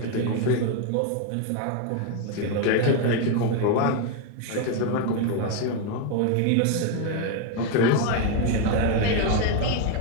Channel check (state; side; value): different; both; correlation 0.01